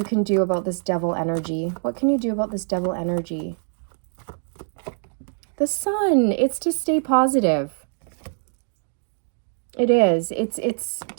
can do about this devil energy. What can you do about this devil energy? The sun, it's to stay positive. It is. It's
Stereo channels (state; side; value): silent; left; 63 dB below the other